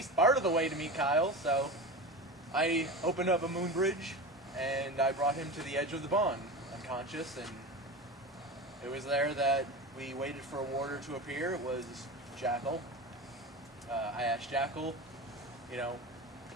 part of the way to meet Kyle. So I opened up a moon bridge and I brought him to the edge of the bond, unconscious, and it was there that we waited for a warder to appear. It was Jackal. I asked Jackal, you know,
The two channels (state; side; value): normal; both; correlation 0.27